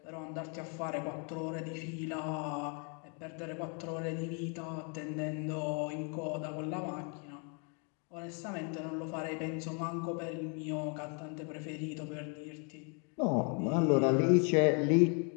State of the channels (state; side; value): quieter; right; 38.0 dB